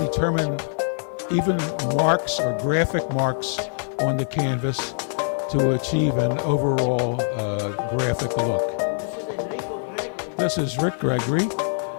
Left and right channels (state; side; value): silent; right; digital silence